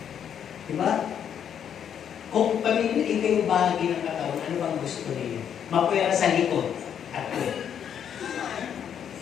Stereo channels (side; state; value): right; quieter; 8.7 dB